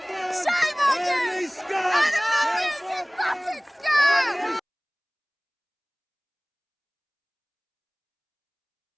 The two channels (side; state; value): both; identical; correlation 1.00